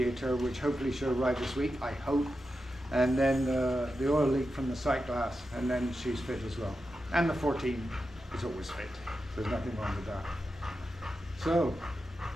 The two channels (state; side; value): normal; both; correlation 0.89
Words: which hopefully should arrive this week, I hope. And then the oil leak from the sight glass, and then she's fit as well. And the 14 is always fit. There's nothing wrong with that. So,